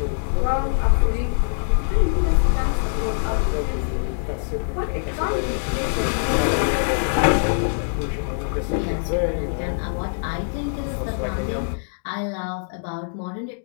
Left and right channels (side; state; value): right; silent; digital silence